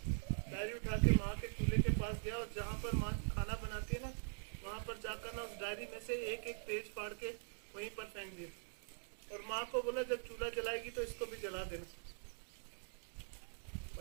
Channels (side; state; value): left; silent; digital silence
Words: डायरी उठा के माँ के चूल्हे के पास गया और जहाँ पर माँ खाना बनाती है ना, वहां पर जाकर ना उस डायरी में से एक एक पेज फाड़ के वहीं पर फेंक दिया। और माँ को बोला जब चूल्हा जलाएगी तो इसको भी जला देना।